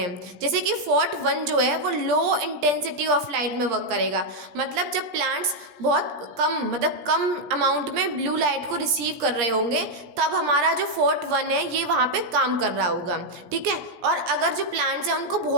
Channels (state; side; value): late; left; 17 ms